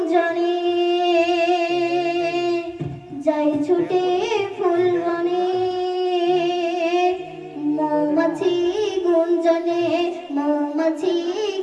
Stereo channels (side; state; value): both; identical; correlation 1.00